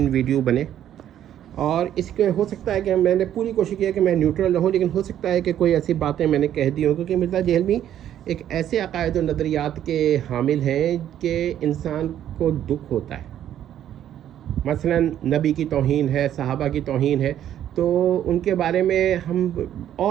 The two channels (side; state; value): left; quieter; 10.9 dB